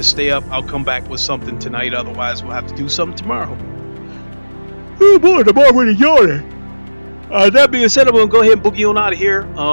stay up, I'll come back with something tonight. Otherwise, we'll have to do something tomorrow. Oh boy, I'm already yawning. That being said, I'm gonna go ahead and boogie on out of here.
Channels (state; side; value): inverted; both; correlation -1.00